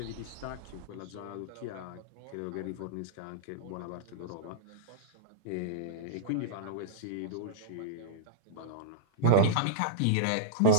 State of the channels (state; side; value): different; both; correlation -0.03